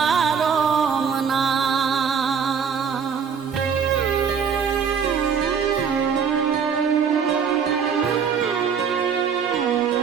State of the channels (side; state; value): left; quieter; 6.7 dB